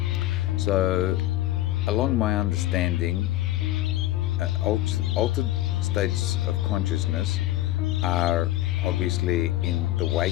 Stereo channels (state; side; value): quieter; right; 15.0 dB